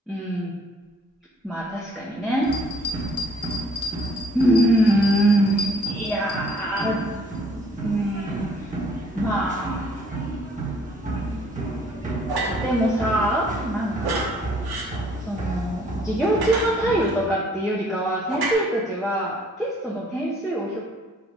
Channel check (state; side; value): normal; both; correlation 0.61